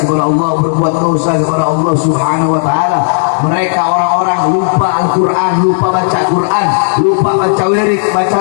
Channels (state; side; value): silent; right; 72 dB below the other